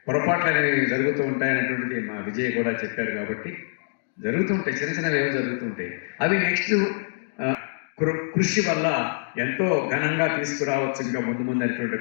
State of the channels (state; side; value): silent; right; digital silence